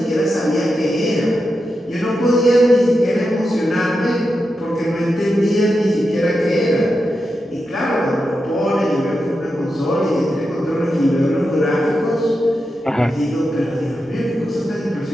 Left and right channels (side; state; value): both; normal; correlation 0.88